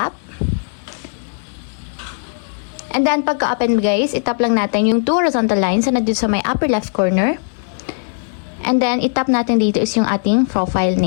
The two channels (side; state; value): right; silent; digital silence